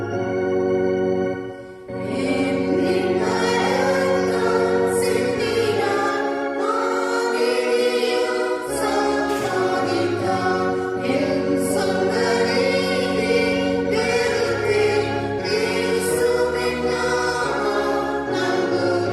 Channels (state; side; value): identical; both; correlation 1.00